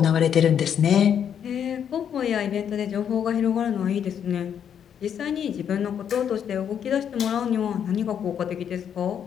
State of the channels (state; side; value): quieter; right; 8.5 dB